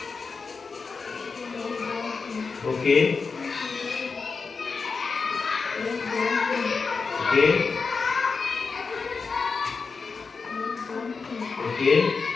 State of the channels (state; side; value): quieter; right; 4.8 dB